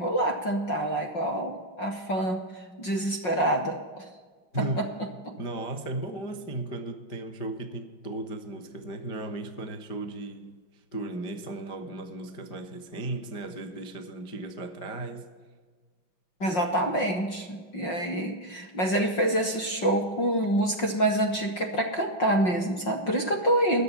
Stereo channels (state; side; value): late; right; 5.5 ms